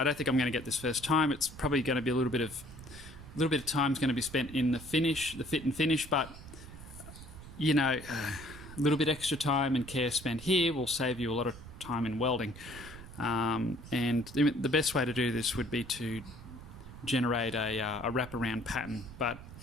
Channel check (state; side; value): noise; right; rumble, 15 dB below the sound